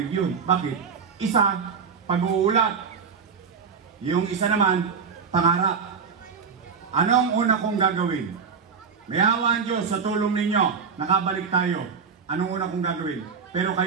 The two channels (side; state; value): left; quieter; 5.9 dB